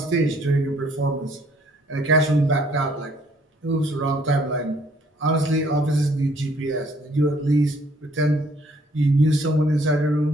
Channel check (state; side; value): normal; both; correlation 0.63